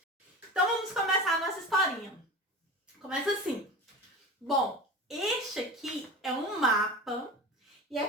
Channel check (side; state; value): both; normal; correlation 0.31